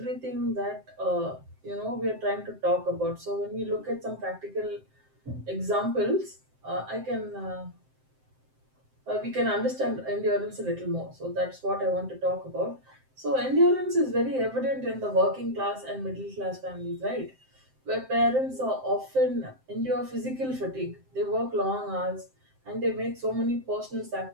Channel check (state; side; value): late; left; 7.7 ms